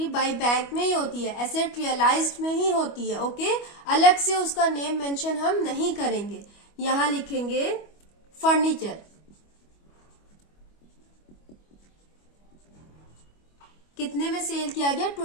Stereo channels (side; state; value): right; late; 25 ms